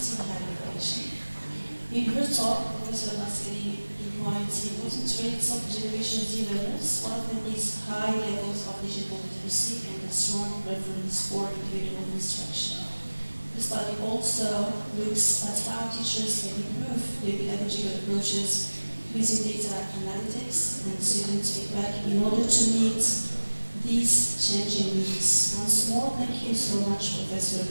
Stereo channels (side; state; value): both; inverted; correlation -1.00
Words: in higher education. In her talk, Professor Nasseri points the important traits of Generation Z learners. One of them is high levels of digital literacy and a strong preference for individual instruction. The study also looks at how teachers can improve their pedagogical approaches using data analytics and student feedback in order to meet these changing needs. Once more, thank you so much, Professor